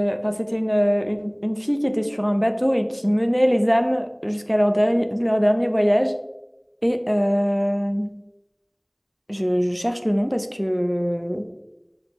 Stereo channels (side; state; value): both; identical; correlation 1.00